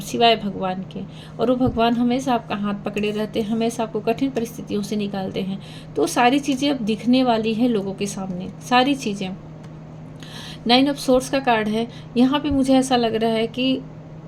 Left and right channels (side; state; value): both; identical; correlation 1.00